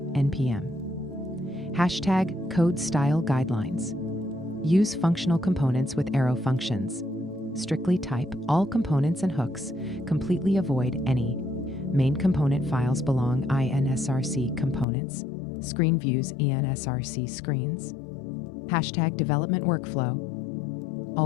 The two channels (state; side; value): drops out; right; at 14.9 s